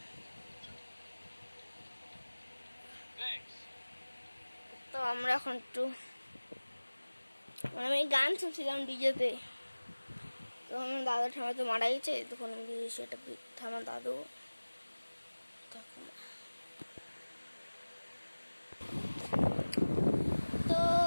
তো আমরা এখন একটু আমি গান শুনছিলাম ডিজেতে। তখন দাদু ঠামা তো মারা গেছে, তখন আমি দিয়েছি একটা আমার দাদু। তো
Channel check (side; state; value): both; inverted; correlation -1.00